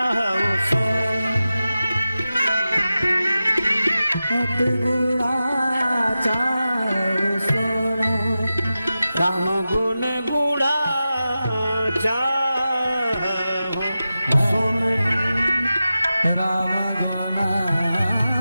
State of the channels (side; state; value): both; inverted; correlation -0.93